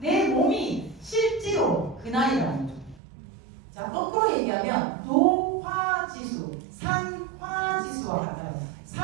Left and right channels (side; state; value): left; drops out; at 3.0 s